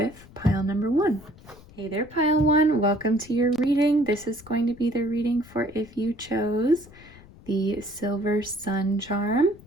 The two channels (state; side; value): noise; left; rumble, 22 dB below the sound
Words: pile number 1. Hey there, pile 1. Welcome to your reading. This is going to be the reading for if you chose the Silver Sun charm,